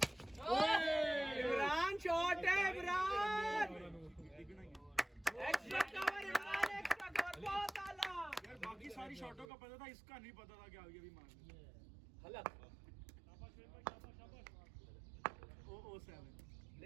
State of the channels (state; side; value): drops out; left; at 9.5 s